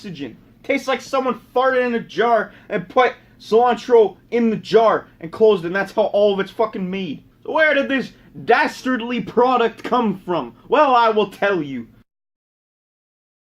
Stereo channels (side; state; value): both; identical; correlation 1.00